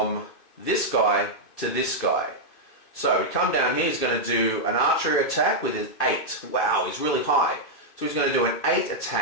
this guy to this guy. So we come down here, he's going to do an archery attack with his 8. Wow, he's really high. So he's going to do an 8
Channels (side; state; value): right; late; 2.5 ms